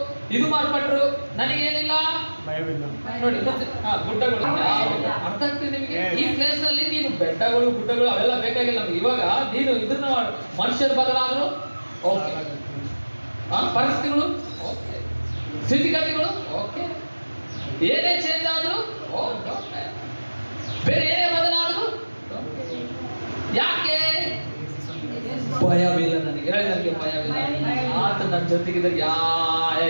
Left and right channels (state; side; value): inverted; both; correlation -1.00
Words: ಇದು ಮಾರ್ಪಟ್ರು, ನನಗೇನಿಲ್ಲ ನೋಡಿ ಗುಡ್ಡಗಳು. ಅರ್ಥ ಆಗ್ತದೆ ನಿಮಗೆ? ಈ ಪ್ಲೇಸ್ ಅಲ್ಲಿ ನೀನು ಬೆಟ್ಟಗಳು ಗುಡ್ಡಗಳು ಅವೆಲ್ಲ ಬೇಕಾಗಿಲ್ಲ ನಮ್ಗೆ. ಇವಾಗ ನೀನು ಇದನ್ನ ಮನುಷ್ಯರು ಬದಲಾದ್ರು ಓಕೆ, ಪರಿಸ್ಥಿತಿಗಳು ಓಕೆ, ಸ್ಥಿತಿಗತಿಗಳು ಓಕೆ, ಏನೇ ಚೇಂಜ್ ಆದ್ರು ಓಕೆ, ಬೇರೆ ಏನೇ ಬದಲಾದ್ರು ಯಾಕೆ? ಭಯವಿಲ್ಲ ನನಗೆ, ಹೇಳಿ ನನಗೆ ಭಯವಿಲ್ಲ. ಆತ ನನ್ನ ಜೊತೆಗಿದ್ರೆ